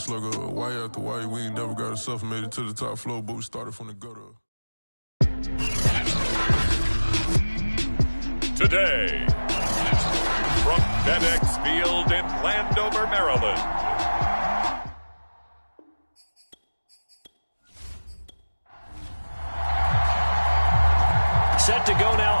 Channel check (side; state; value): both; inverted; correlation -1.00